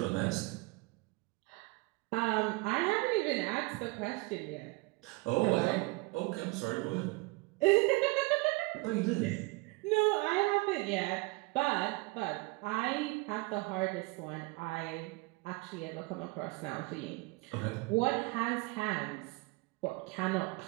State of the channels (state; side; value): quieter; left; 25.2 dB